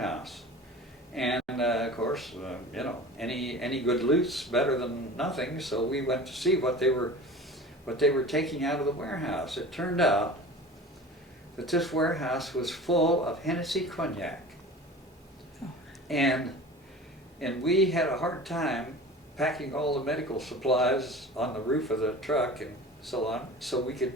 And of course, you know, any good loot's better than nothing, so we went to see what they were taking out of the warehouse. It turned out that this warehouse was full of Hennessy cognac. Oh. And we had a hard time packing all the medical supplies on the roof of the truck and so on, so we could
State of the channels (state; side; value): normal; both; correlation 0.38